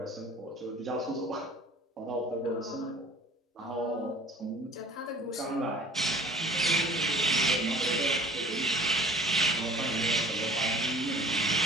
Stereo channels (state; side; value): normal; both; correlation 0.48